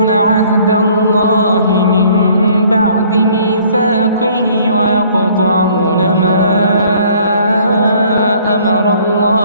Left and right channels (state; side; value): inverted; both; correlation -0.58